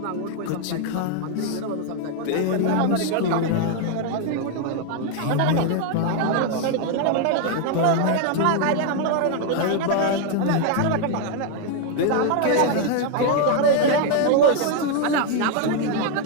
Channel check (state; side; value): different; both; correlation 0.00